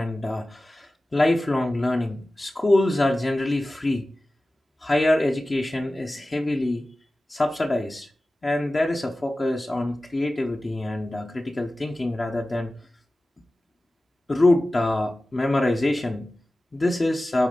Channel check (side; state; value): both; normal; correlation 0.96